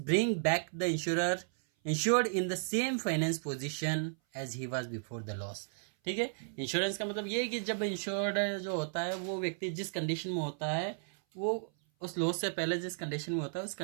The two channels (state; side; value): silent; left; 55 dB below the other